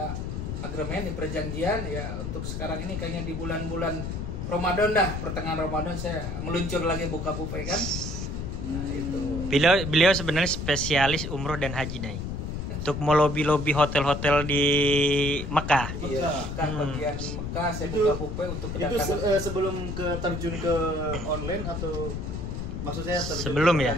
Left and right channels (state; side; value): noise; left; rumble, 5 dB below the sound